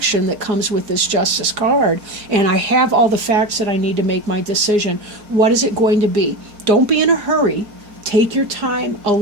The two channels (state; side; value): late; left; 4.8 ms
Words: that comes with this Justice card. And I have all the facts that I need to make my decision. What is it going to be? Don't be in a hurry. Take your time.